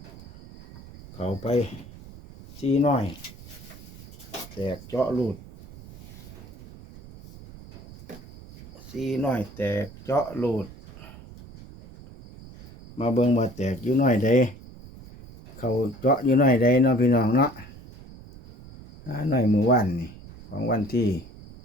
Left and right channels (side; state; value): right; noise; rumble, 18 dB below the sound